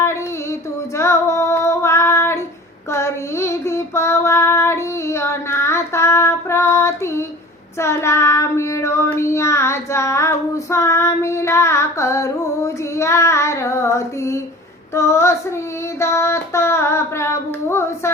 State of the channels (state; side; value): normal; both; correlation 0.41